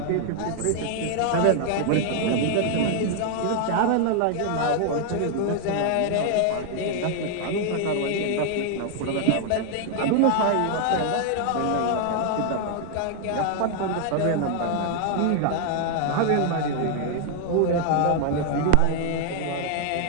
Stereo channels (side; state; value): both; different; correlation 0.00